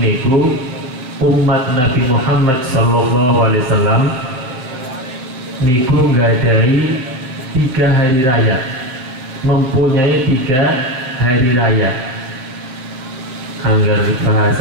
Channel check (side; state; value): left; late; 7.8 ms